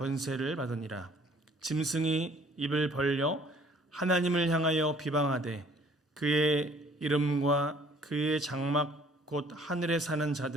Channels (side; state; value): both; normal; correlation 0.57